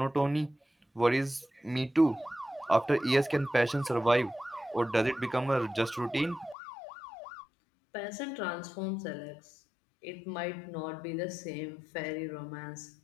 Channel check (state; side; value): drops out; right; at 6.6 s